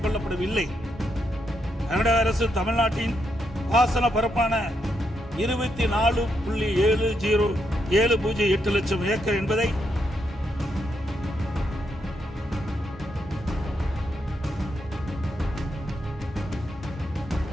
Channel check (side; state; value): both; normal; correlation 0.80